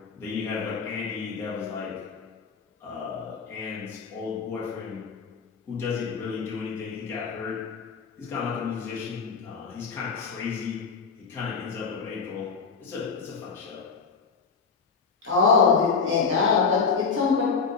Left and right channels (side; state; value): right; quieter; 5.3 dB